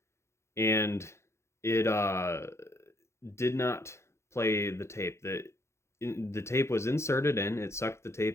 And it did not play the tape. The tape was inserted in, it sucked the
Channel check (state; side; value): late; right; 0.13 ms